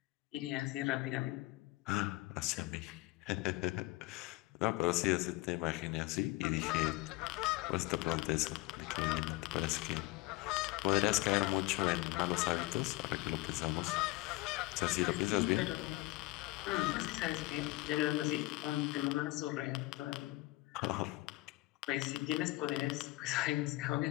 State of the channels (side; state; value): right; quieter; 20.6 dB